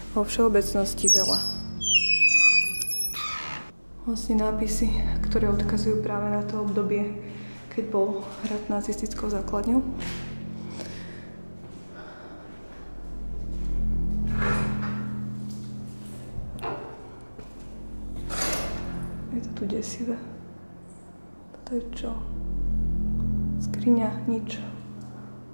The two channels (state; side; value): inverted; both; correlation -1.00